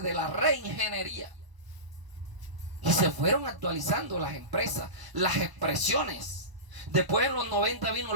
de la reingeniería. Y se fueron actualizando las empresas, las expresiones. Después en los 90 vino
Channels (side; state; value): left; late; 1.0 ms